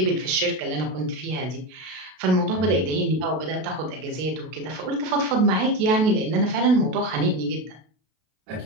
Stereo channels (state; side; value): late; left; 32 ms